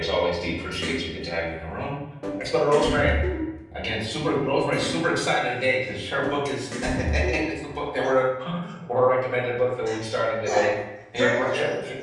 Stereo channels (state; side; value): identical; both; correlation 1.00